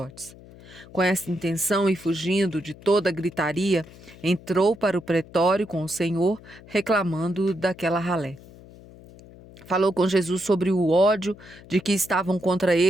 Com essa intenção e fugindo de toda a gritaria, entrou para o pretório com o Senhor, reclamando daquela ralé. Falou com Jesus sobre o ódio de que estavam contra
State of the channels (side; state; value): left; noise; hum, 21 dB below the sound